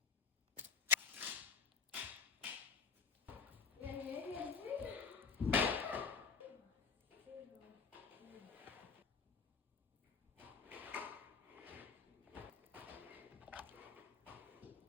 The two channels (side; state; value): right; quieter; 5.8 dB